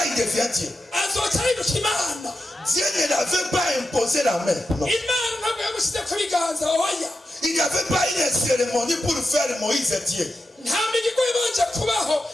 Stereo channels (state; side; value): normal; both; correlation 0.90